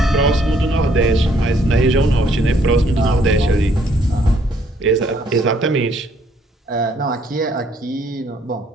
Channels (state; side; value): normal; both; correlation 0.66